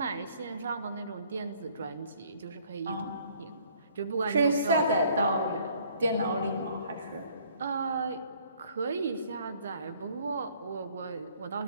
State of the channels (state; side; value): inverted; both; correlation -0.60